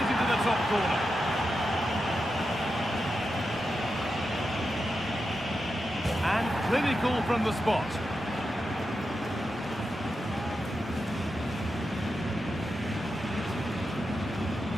into the top corner. And clinical from the spot.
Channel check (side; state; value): both; normal; correlation 0.88